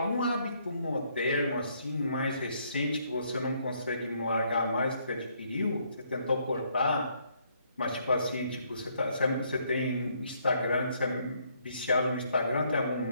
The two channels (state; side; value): inverted; both; correlation -0.70